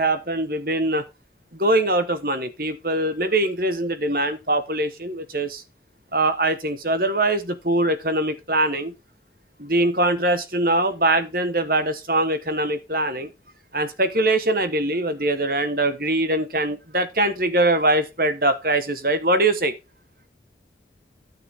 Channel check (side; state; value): both; normal; correlation 0.00